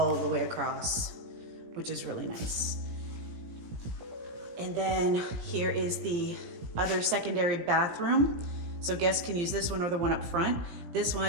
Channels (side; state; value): left; late; 17 ms